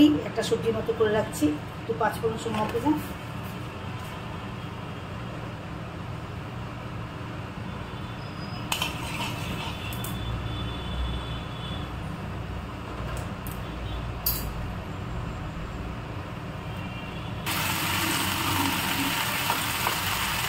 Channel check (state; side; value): identical; both; correlation 1.00